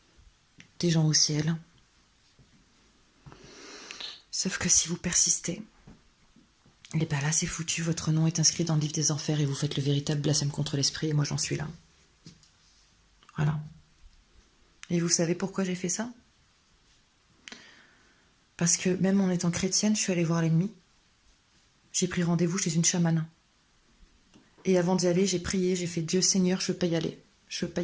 des gens au ciel. Sauf que si vous persistez, et bien là, c'est foutu, votre nom est inscrit dans le livre des enfers et vous faites le véritable blasphème contre l'esprit, et moi j'en suis là. Voilà. Et vous savez pourquoi j'ai fait ça? Parce que même en étant chrétienne, je suis allée voir l'ennemi. J'ai pris rendez-vous chez une chamane. Et avant d'y aller, j'ai prié, j'ai fait Dieu Seigneur, je veux pas y aller. Je veux pas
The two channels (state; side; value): identical; both; correlation 1.00